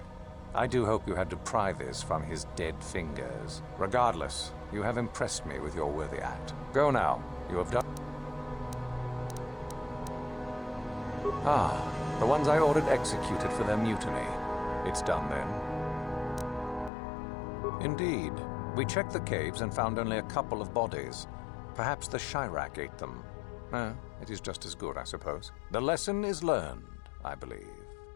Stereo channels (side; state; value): right; drops out; at 16.9 s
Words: I do hope you had to pry this from his dead fingers. Regardless, you have impressed me with your worthy act. Go now. You have done... Ah, the ones I ordered executed for their mutiny. It's done then. Indeed. We checked the caves and found only a couple of bodies. Perhaps the Chirac ate them. It is just as good, I suppose. The lesson is learned, I believe.